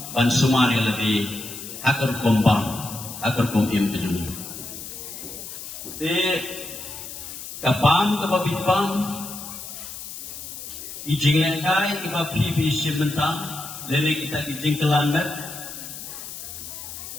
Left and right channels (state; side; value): noise; left; hiss, 10 dB below the sound